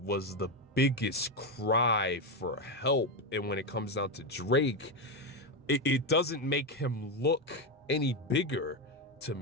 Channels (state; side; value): normal; both; correlation 0.10